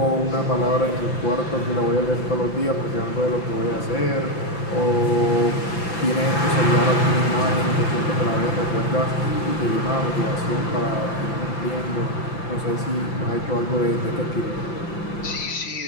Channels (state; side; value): late; right; 5.8 ms